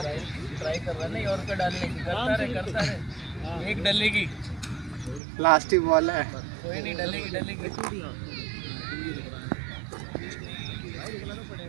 ट्राई कर रहा नहीं और का डालने की करता रहे एक डलेगी लास्ट ही बॉल है कोई नहीं डलेगी डलेगी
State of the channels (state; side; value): drops out; left; at 5.2 s